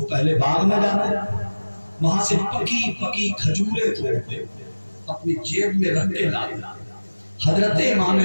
پہلے باغ میں جاتے, وہاں سے پکی پکی کھجوریں توڑتے, اپنی جیب میں رکھ کے لاتے. حضرت امام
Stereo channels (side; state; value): both; inverted; correlation -1.00